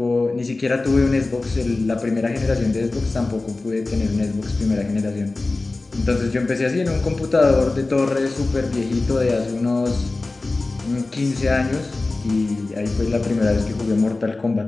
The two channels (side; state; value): right; quieter; 3.3 dB